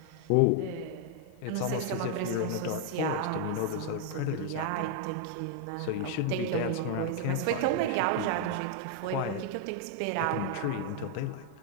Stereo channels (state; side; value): different; both; correlation 0.00